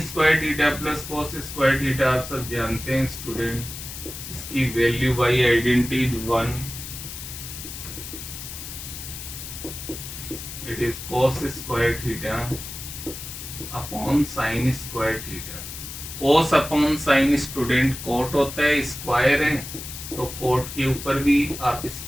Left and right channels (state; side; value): noise; left; hiss, 10 dB below the sound